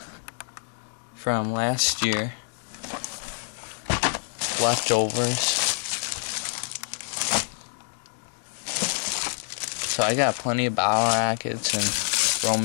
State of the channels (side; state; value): right; silent; 61 dB below the other